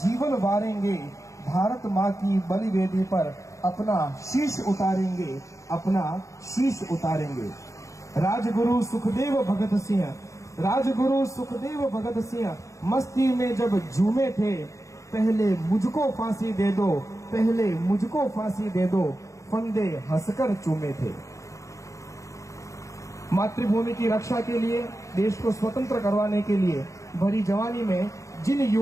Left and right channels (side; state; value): right; late; 0.15 ms